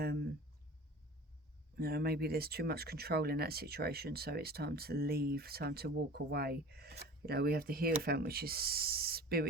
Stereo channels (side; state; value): both; normal; correlation 0.40